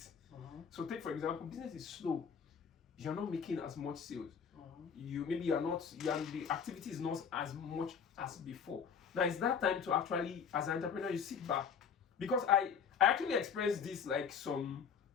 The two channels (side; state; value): right; quieter; 6.8 dB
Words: So take, for example, business is slow. You're not making as much sales. The activity is not as much as before. Now it's that time to actually, as an entrepreneur, you sit back. Because I actually experienced this like some